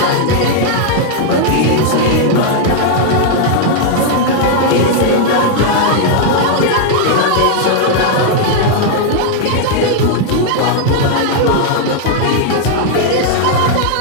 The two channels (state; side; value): different; both; correlation 0.00